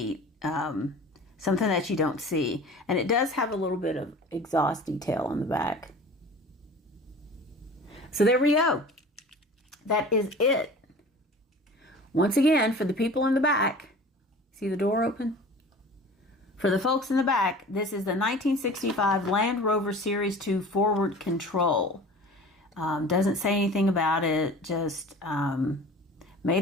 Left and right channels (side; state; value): both; normal; correlation 0.41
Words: Something that you don't see. And it does have a little bit of exhaust detail on the back. So there we go. That is it. Once again, for the people in the back, see the door open? For the folks in the back, this is the 1965 Land Rover Series 2 forward control. Doesn't say anything about it, just